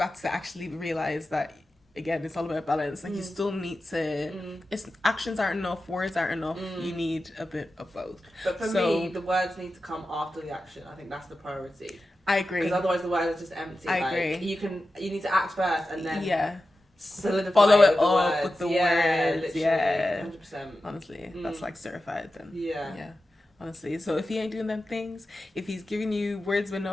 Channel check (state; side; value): normal; both; correlation 0.93